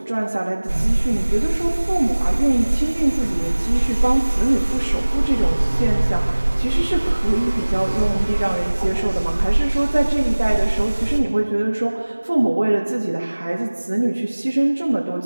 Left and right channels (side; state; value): both; inverted; correlation -1.00